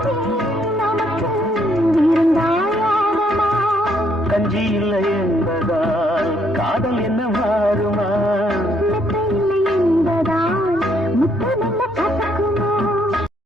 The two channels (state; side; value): normal; both; correlation 0.70